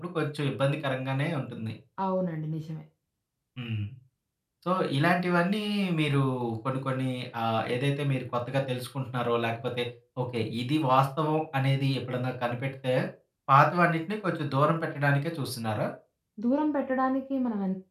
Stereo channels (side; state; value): both; identical; correlation 1.00